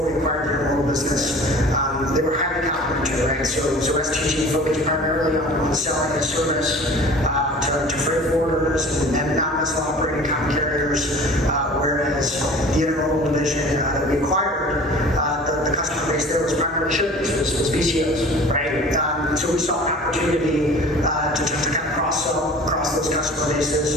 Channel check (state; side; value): normal; both; correlation 0.43